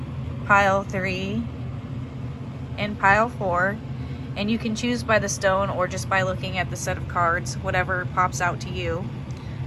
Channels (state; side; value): identical; both; correlation 1.00